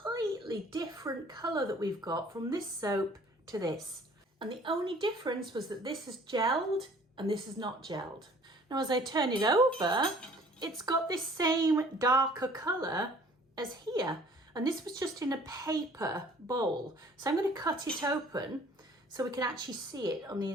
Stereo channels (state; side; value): normal; both; correlation 0.54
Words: different colour that we've got from this soap to this. And the only difference was that this is gelled and this is not gelled. Now as I turn it over, it's got this same darker colour as here. And this was just in a paper bowl. So I'm going to cut it open so we can actually see it on the